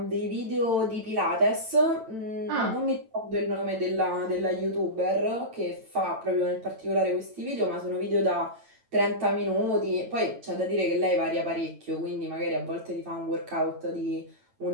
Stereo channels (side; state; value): left; late; 9.0 ms